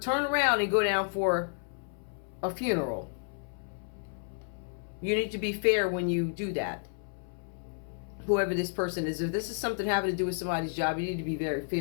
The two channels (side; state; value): right; silent; 57 dB below the other